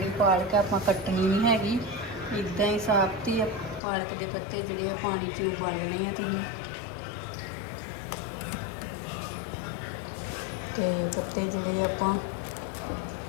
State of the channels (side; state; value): right; drops out; at 3.8 s